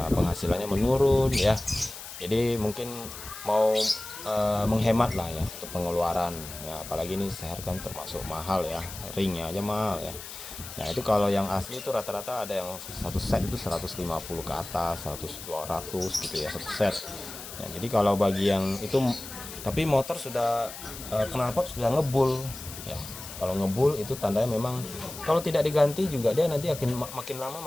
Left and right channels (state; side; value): noise; left; hiss, 12 dB below the sound